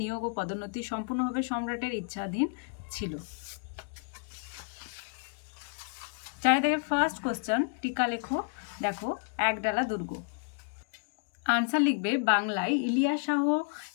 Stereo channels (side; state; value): right; quieter; 39.8 dB